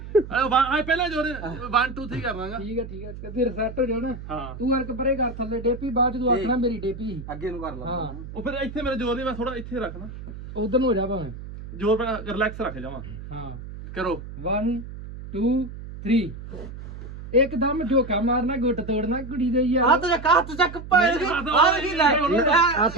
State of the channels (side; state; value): right; noise; hum, 12 dB below the sound